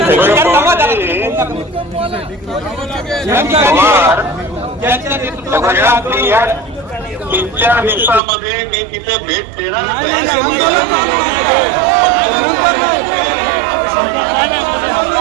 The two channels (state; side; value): drops out; left; at 8.2 s